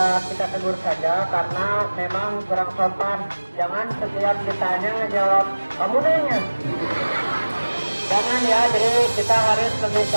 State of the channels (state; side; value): inverted; both; correlation -1.00